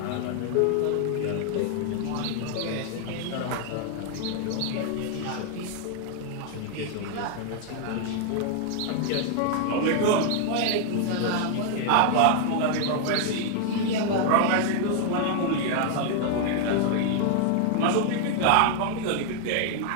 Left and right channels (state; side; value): different; both; correlation 0.00